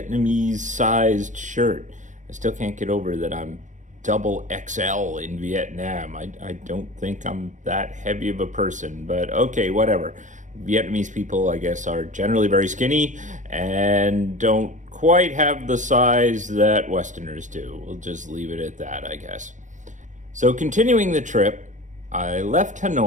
sized shirt. I still can't get over that I'm double XL in Vietnam. I don't think I'm that heavy of a person, but okay, whatever. Vietnamese people, I guess, are generally very skinny and don't quite have the size that Westerners do. We'll just leave it at that, I guess. So, continuing the trip, I left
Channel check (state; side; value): late; left; 0.36 ms